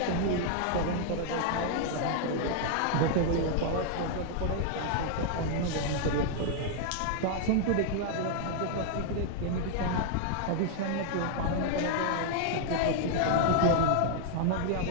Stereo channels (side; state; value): both; different; correlation 0.00